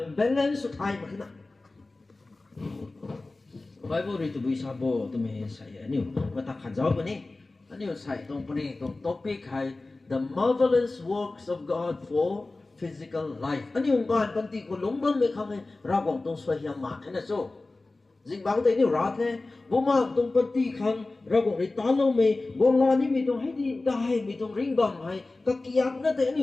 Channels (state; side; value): quieter; right; 3.2 dB